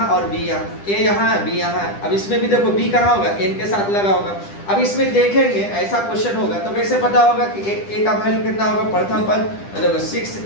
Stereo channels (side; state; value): right; late; 10 ms